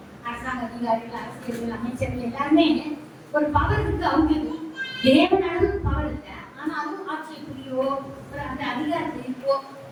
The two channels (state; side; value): identical; both; correlation 1.00